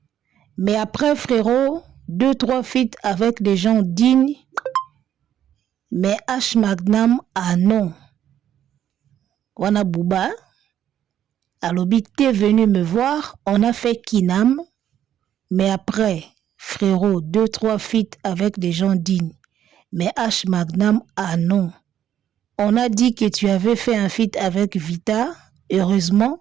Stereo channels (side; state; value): left; quieter; 10.5 dB